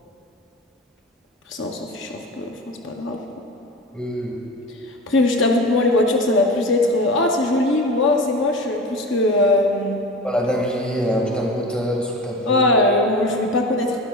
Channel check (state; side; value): normal; both; correlation 0.31